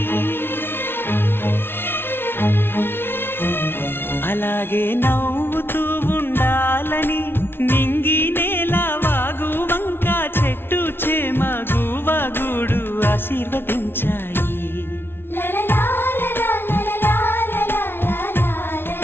అలాగే నవ్వుతూ ఉండాలని నింగి నేల వాగు వంక చెట్టు చేమ గువగూడు ఆశీర్వదించాయి.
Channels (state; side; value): late; right; 0.11 ms